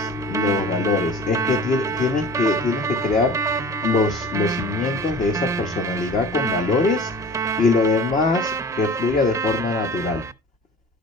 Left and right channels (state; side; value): normal; both; correlation 0.42